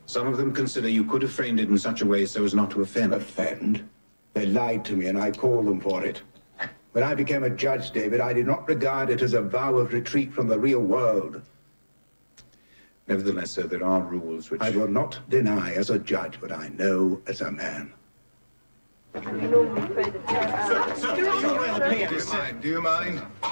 Some of them consider you could have framed it in such a way so as not to offend. Offend? They lied to me and I call them for it. When I became a judge, David, I did not regard it as a vow of retreat from the real world. Nevertheless, sir, there are rules which... I will not deny as a judge what I know as a man. Do you mind?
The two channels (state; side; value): inverted; both; correlation -1.00